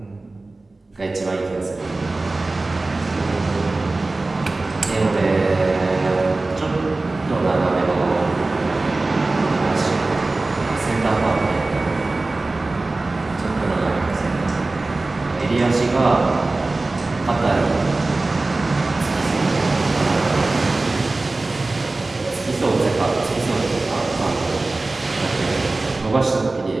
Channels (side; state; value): left; quieter; 3.2 dB